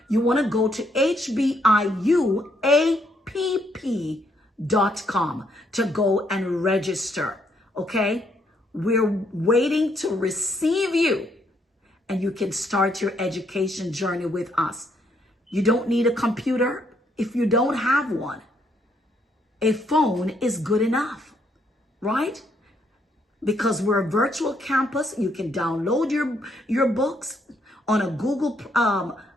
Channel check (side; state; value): both; normal; correlation 0.72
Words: you want to go to hbiuapp.com to go and register. Okay? We're waiting to receive you, and you can start your education journey with us. You don't need a computer if you don't have one. A phone is good enough, right? Because we're a virtual campus, you can download your books on a Google